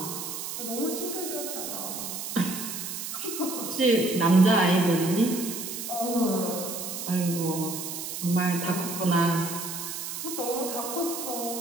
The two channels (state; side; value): noise; right; hiss, 6 dB below the sound